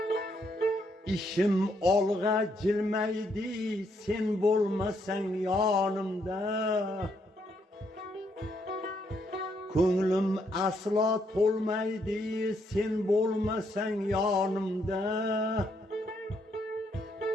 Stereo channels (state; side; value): normal; both; correlation 0.74